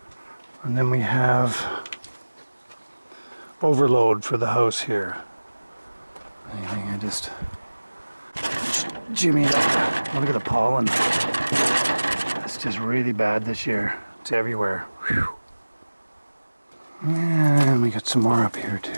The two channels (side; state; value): both; inverted; correlation -1.00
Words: and then we have overload for the house here. I just jimmy it up. Look at the pollen. It's just really bad this year. It's everywhere. Whew. And we got some more up here